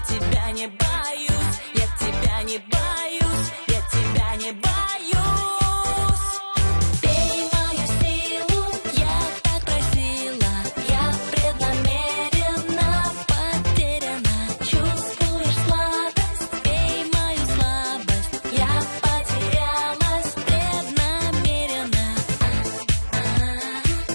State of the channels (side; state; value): both; inverted; correlation -1.00